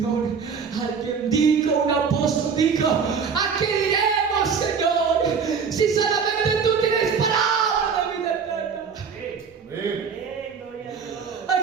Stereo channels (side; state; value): left; quieter; 6.0 dB